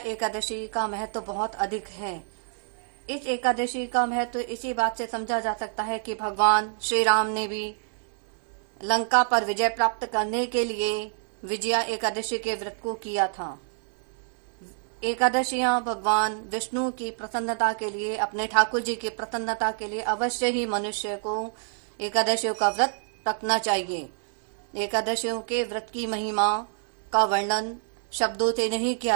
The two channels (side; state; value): left; silent; 60 dB below the other